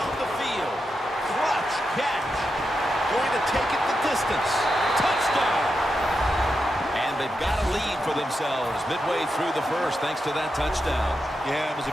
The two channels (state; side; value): normal; both; correlation 0.87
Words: the field. Clutch catch. Going to take it the distance. Touchdown. And they've got a lead for themselves midway through the first thanks to that touchdown. Yeah, it was